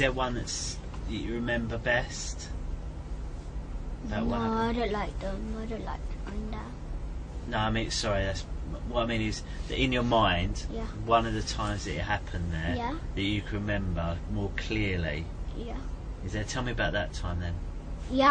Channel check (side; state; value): both; identical; correlation 1.00